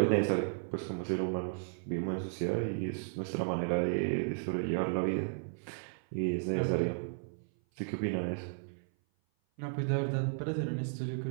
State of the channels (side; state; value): left; silent; 55 dB below the other